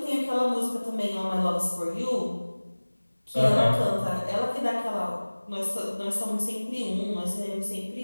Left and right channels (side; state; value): both; inverted; correlation -1.00